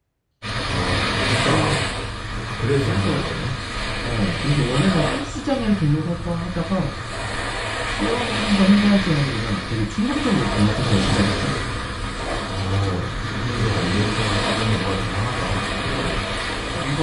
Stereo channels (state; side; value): identical; both; correlation 1.00